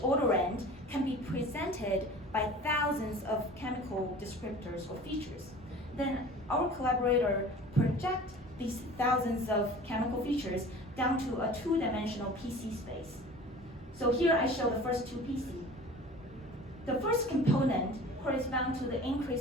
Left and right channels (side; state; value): both; normal; correlation 0.42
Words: odorant can be presented by thousands of chemical descriptors or features. Then our collaborator project these thousands of chemical features down to a two-dimensional PC space. So here I show the first two PC. The first component corresponds to the